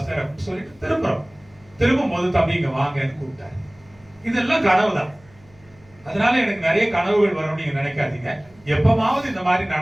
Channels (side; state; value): left; noise; hum, 28 dB below the sound